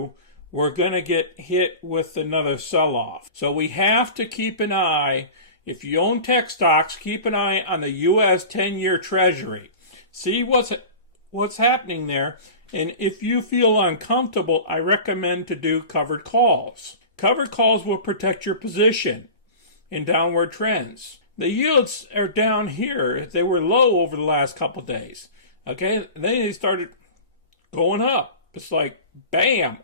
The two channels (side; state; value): both; inverted; correlation -0.35